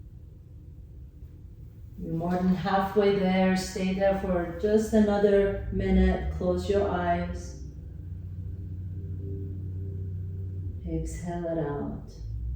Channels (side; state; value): both; identical; correlation 1.00